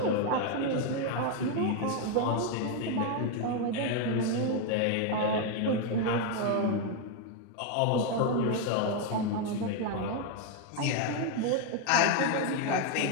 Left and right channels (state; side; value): different; both; correlation 0.01